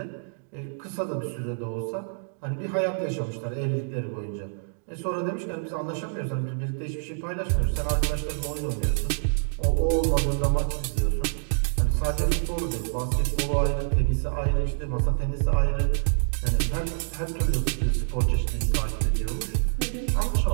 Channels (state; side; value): silent; left; digital silence